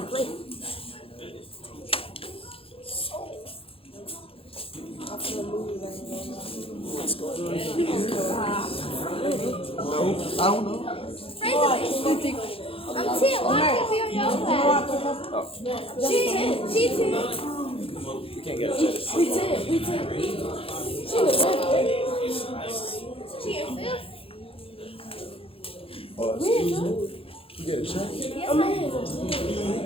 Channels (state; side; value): late; right; 0.27 ms